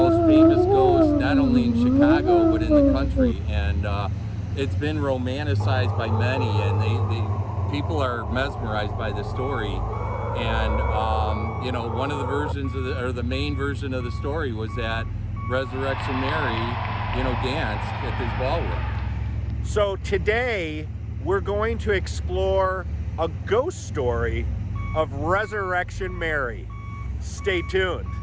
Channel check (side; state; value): both; identical; correlation 1.00